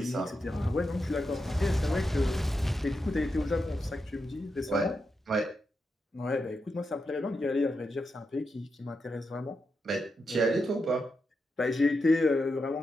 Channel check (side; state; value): both; normal; correlation 0.86